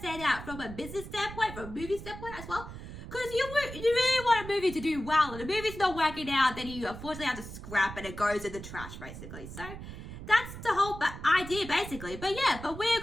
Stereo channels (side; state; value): right; noise; rumble, 11 dB below the sound